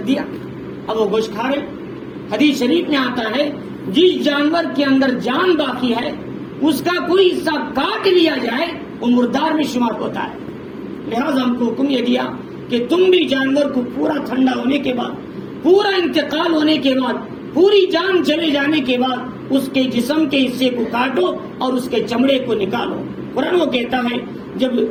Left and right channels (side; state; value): both; identical; correlation 1.00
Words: دیا، اب وہ گوشت کھا رہے۔ حدیث شریف میں آتا ہے جس جانور کے اندر جان باقی ہے اس کا کوئی حصہ کاٹ لیا جائے وہ مردار میں شمار ہوتا ہے۔ لہذا ہم کو حکم یہ دیا کہ تم بھی جانور کو پورا ٹھنڈا ہونے کے بعد، پورا انتقال ہونے کے بعد پوری جان چلے جانے کے بعد اس کے جسم کے حصے کو کاٹو اور اس کے چمڑے کو نکالو۔ قرآن وہ کہتا ہے جب